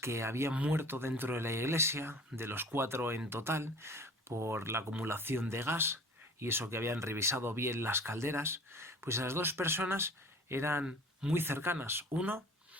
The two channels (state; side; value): normal; both; correlation 0.44